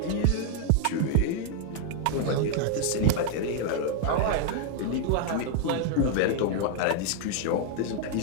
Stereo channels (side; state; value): both; different; correlation 0.00